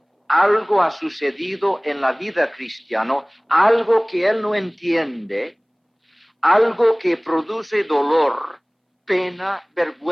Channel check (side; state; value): both; identical; correlation 1.00